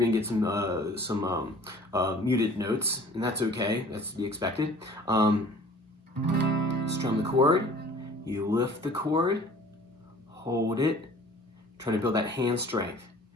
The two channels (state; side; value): normal; both; correlation 0.49